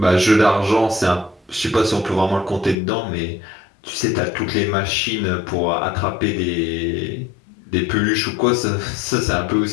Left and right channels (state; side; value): drops out; right; at 2.8 s